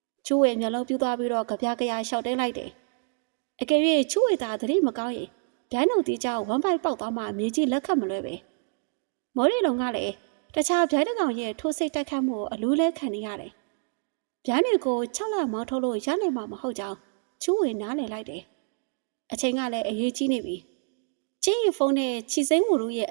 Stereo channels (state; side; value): silent; left; 57 dB below the other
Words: ချူးဝေမျက်လုံးပြူသွားပြီးတော့ကြပြားကြရာရှောက်တဲလိုက်တယ်။အကယ်၍ချူးဝေသာသတိမကောင်းရင်ဗျာနှုတ်သီးကြောင့်ဝမ်းပိုက်ပေါက်သွားမှမြေကြီးလက်ခတ်မလွဲပဲမော်ရီလုံကလည်းတခြားဗျာတကောင်ရဲ့ထိုးစိတ်တိုက်ခတ်မှုကိုအလူးလဲခံနေရတယ်ဗျာတွေကို6လမောင်းထုတ်လို့ရနိုင်မှာမဟုတ်ကြောင်းချူးဝေနားလည်လိုက်တယ်အချိန်ကလည်းအရေးကြီးနေပြီချင်းရီဖုန်းနဲ့ချီစိမ့်ဝူတို့ရဲ့